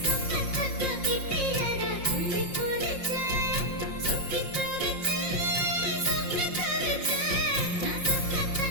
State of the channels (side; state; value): right; late; 5.6 ms